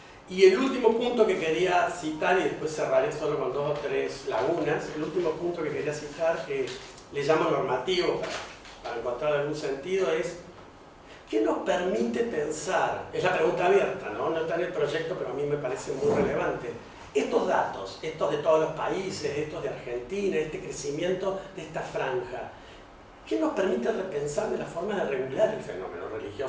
Y el último punto que quería citar, y después cerraré solo con 2 o 3 lagunas, el último punto que quería citar, que le llamo normativo para encontrar algún sentido, es ¿qué nos permite pensar? Es la pregunta abierta, ¿no? No está en el proyecto, pero a mí me parece muy relevante. Estos datos, estos de todos los países, estos de Argentina, este crecimiento de esta franja, ¿qué nos permite repensar de la forma de regular el fenómeno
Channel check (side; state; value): both; identical; correlation 1.00